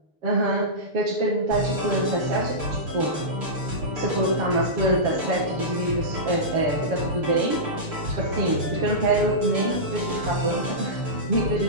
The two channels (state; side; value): late; left; 6.7 ms